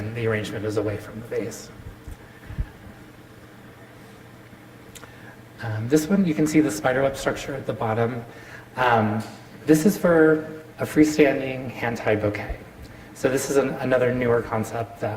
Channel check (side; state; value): both; identical; correlation 1.00